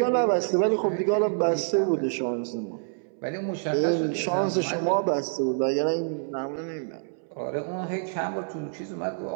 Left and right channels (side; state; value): left; silent; 60 dB below the other